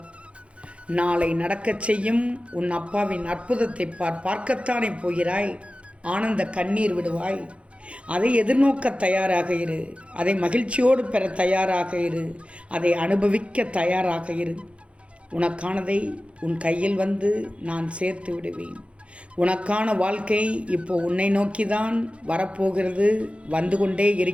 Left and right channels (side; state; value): left; late; 0.061 ms